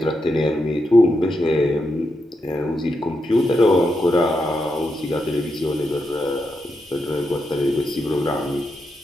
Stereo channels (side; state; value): both; normal; correlation 0.84